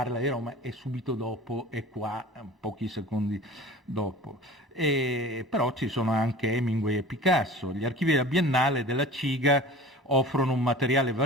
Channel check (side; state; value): both; normal; correlation 0.40